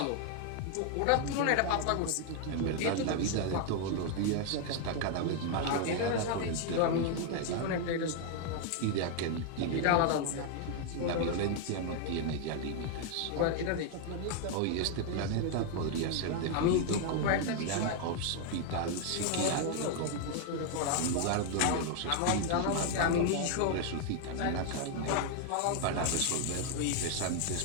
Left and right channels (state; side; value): different; both; correlation 0.00